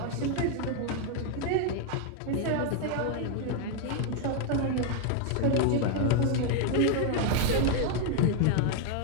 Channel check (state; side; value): different; both; correlation 0.01